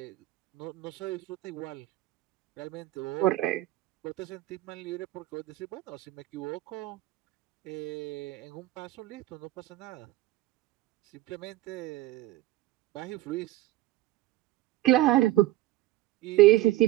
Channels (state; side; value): quieter; left; 16.7 dB